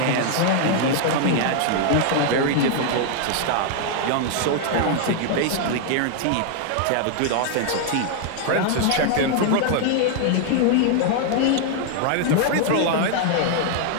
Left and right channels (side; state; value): both; different; correlation 0.00